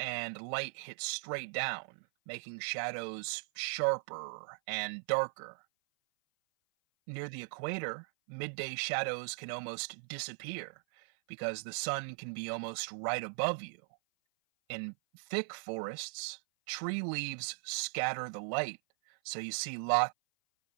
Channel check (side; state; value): left; silent; 52 dB below the other